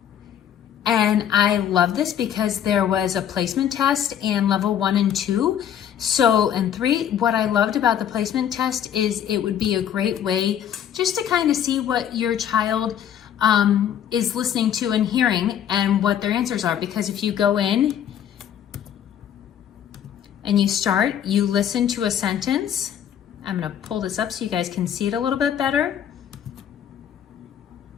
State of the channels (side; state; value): right; quieter; 9.7 dB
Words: and I love this because there was a placement test in level 1 and 2. So, and 3, what I loved about the placement test is it would be a great way just to kind of see what your child is listening to and hearing and what their answers are. Because if you go in and you listen to a sentence. I'm gonna pull this up so you guys can see it a little bit better.